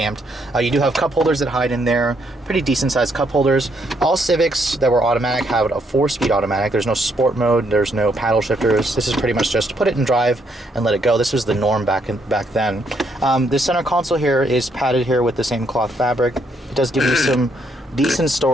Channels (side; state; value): both; normal; correlation 0.73